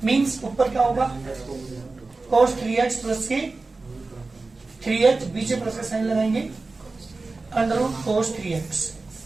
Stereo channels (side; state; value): left; quieter; 3.6 dB